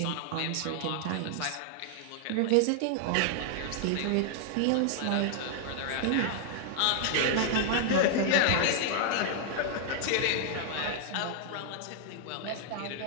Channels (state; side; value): different; both; correlation 0.00